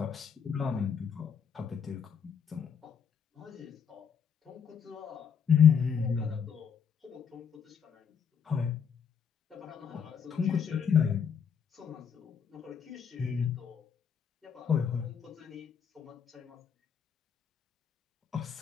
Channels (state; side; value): quieter; right; 7.2 dB